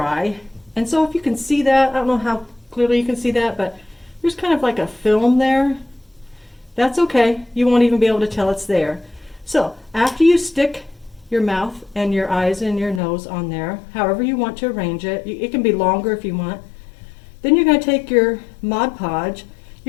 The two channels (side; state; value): right; drops out; at 13.0 s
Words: And so if you can see that, I don't know how clearly you can see that, but there's kind of like a film there. That's okay. You won't even be able to tell it's there. So after you stick your mouth and your eyes and your nose on there, however you want to arrange it. It can be longer if you want. Then you're going to take your Mod Podge.